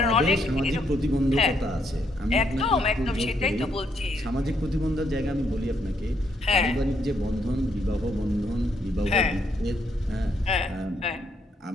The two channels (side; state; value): both; normal; correlation 0.74